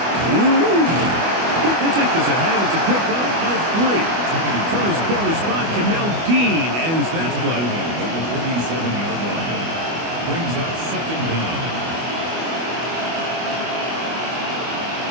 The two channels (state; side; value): late; left; 24 ms